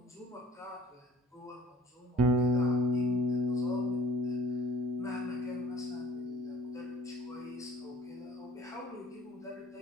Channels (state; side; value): normal; both; correlation 0.50